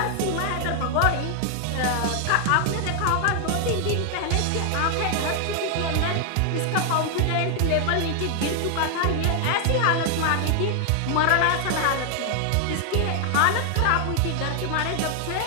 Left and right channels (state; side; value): different; both; correlation 0.00